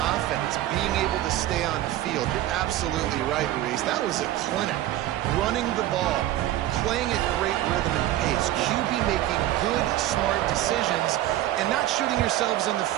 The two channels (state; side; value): quieter; left; 14.2 dB